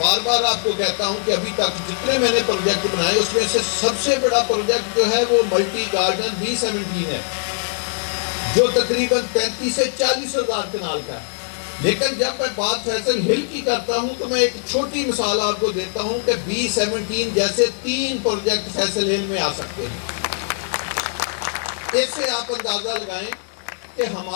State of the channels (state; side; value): silent; right; digital silence